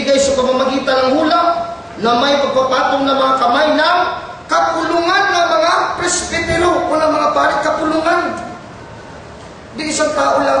sa pamamagitan ng hula na may pagpapatong na mga kamay ng kapulungan ng mga presbitero o ng mga pari. Kapulungan. Di isang tao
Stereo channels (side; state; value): both; identical; correlation 1.00